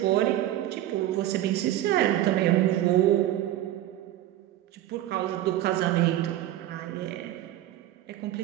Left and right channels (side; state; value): left; quieter; 13.6 dB